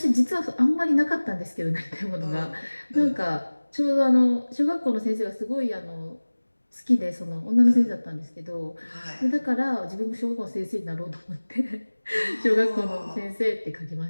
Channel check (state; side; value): inverted; both; correlation -1.00